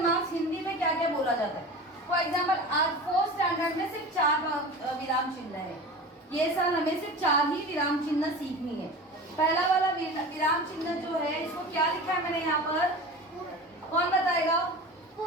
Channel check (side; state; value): both; normal; correlation 0.33